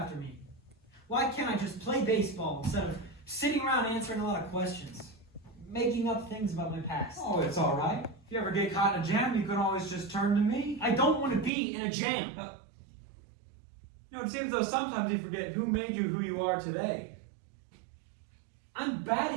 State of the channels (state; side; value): drops out; left; at 11.5 s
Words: me? Why can't I just play baseball instead of sitting around answering a lot of questions? Making up things about my past. Oh, it's all right. If you ever get caught in a jam, you can always just turn to me. I don't want to be in a jam. It seems though sometimes you forget who made you who you are today. I'm